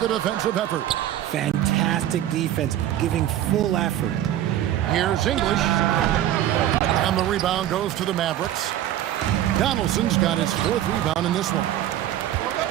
defensive effort. Fantastic defense, giving full effort. Here's English. And the rebound goes to the Mavericks. Donaldson's got his 4th rebound in this one.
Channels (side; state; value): left; quieter; 12.2 dB